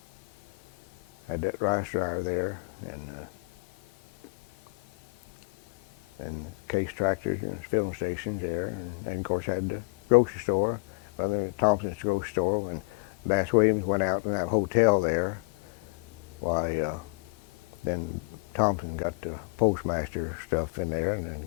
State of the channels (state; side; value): quieter; right; 30.9 dB